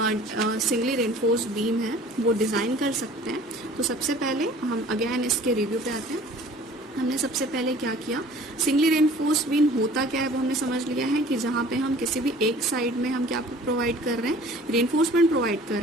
सिंगली रेनफोर्स्ड बीम है वो डिज़ाइन कर सकते हैं. तो सबसे पहले हम अगेन इसके रिव्यू पे आते हैं. हमने सबसे पहले क्या किया, सिंगली रेनफोर्स्ड बीम होता क्या है वो हमने समझ लिया है कि जहाँ पे हम किसी भी एक साइड में हम क्या प्रोवाइड कर रहे हैं, रेनफोर्समेंट प्रोवाइड कर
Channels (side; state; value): both; normal; correlation 0.49